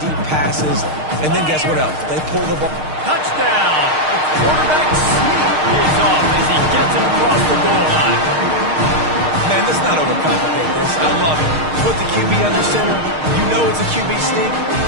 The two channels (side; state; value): left; late; 6.5 ms